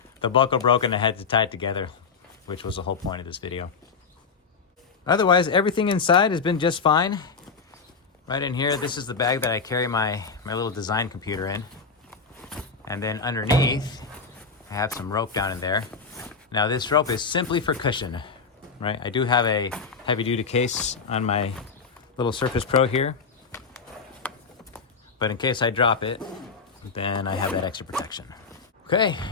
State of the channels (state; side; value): quieter; right; 5.2 dB